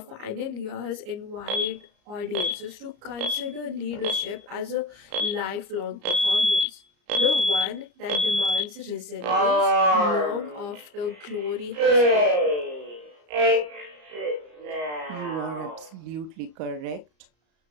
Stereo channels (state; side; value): late; left; 34 ms